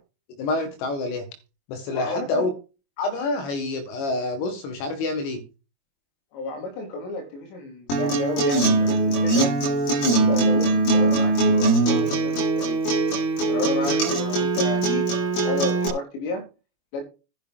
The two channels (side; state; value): right; late; 22 ms